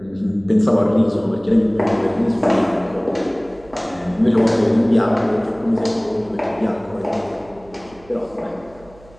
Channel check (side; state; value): right; noise; hum, 25 dB below the sound